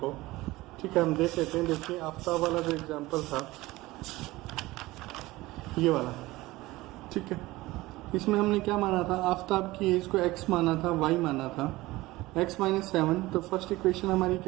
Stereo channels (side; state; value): left; quieter; 19.1 dB